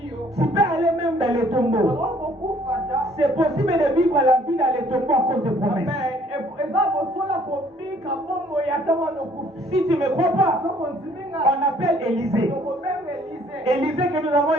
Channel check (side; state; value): both; normal; correlation 0.60